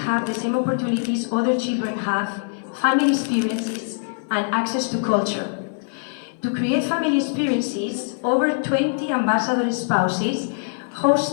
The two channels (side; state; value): right; silent; 59 dB below the other